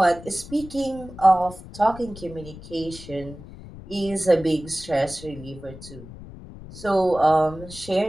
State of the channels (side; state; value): left; noise; rumble, 15 dB below the sound